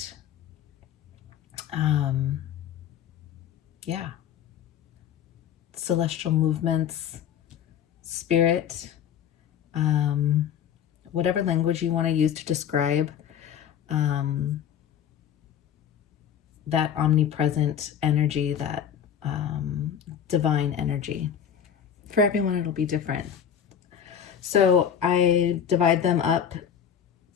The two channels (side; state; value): right; quieter; 8.7 dB